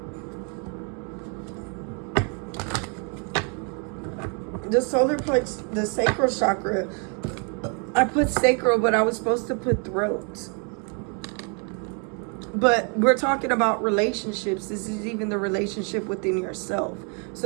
The solar plex, the sacral chakra, I put sacral, but I was supposed to put throat. But we're talking about relationships. This is even the relationship within yourself.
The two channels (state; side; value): quieter; left; 38.2 dB